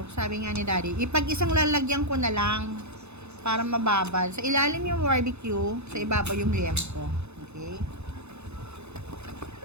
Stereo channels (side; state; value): left; late; 0.81 ms